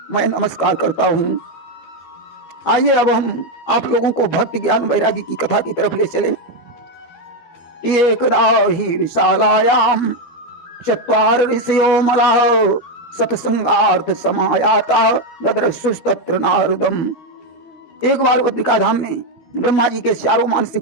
मैं नमस्कार करता हूँ। आइए अब हम आप लोगों को भक्ति ज्ञान वैराग्य की कथा की तरफ ले चले। एकदा ही विशालायाम चत्वार ऋषयो मलाः सत्संगार्थ समायाता ददृशुस्तत्र नारदम। एक बार बद्रिका धाम में ब्रह्मा जी के 4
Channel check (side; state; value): right; late; 12 ms